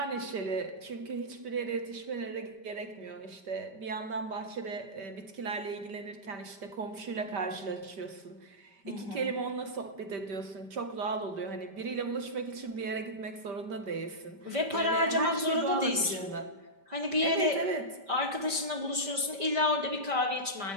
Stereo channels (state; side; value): late; left; 5.1 ms